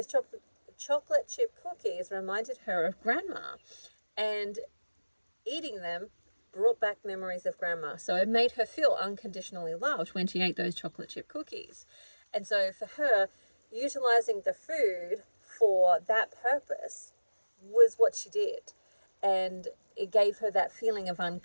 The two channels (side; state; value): both; inverted; correlation -1.00